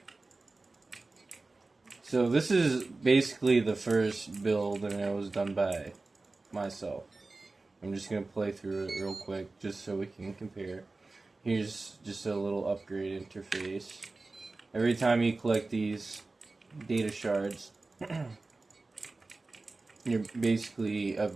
So this is basically the first build, and it was done by myself. I'm just going to play through it real quick just so we can compare. Here's just a little upgrade interface. Every time you collect these data shards, you're basically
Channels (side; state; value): left; quieter; 3.4 dB